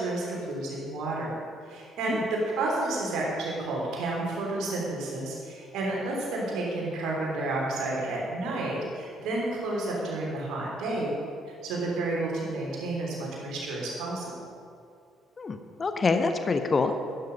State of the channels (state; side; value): normal; both; correlation 0.70